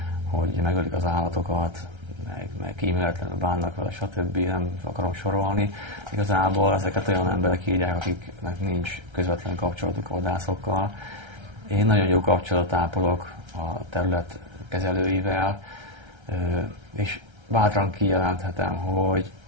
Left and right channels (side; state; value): left; late; 1.3 ms